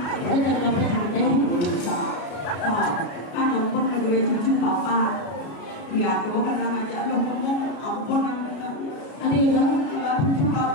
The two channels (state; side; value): late; right; 32 ms